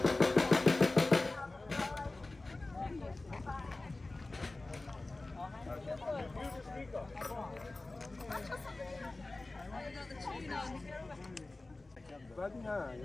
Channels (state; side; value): quieter; right; 3.1 dB